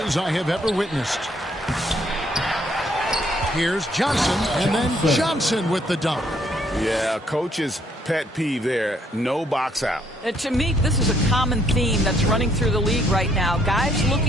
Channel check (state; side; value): normal; both; correlation 0.68